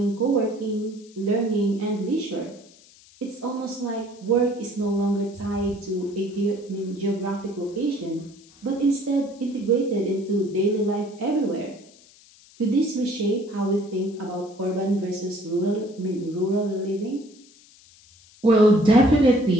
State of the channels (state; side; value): noise; left; hiss, 26 dB below the sound